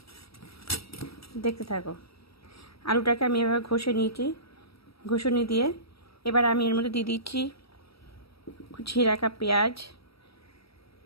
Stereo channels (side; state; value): right; late; 0.76 ms